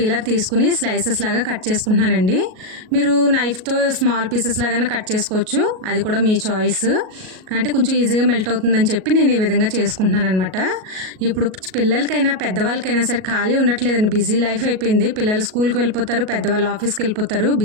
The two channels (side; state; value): left; late; 37 ms